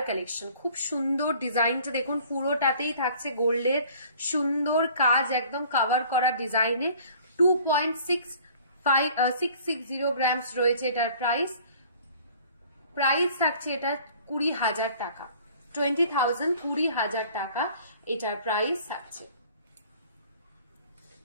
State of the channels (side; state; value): both; inverted; correlation -0.51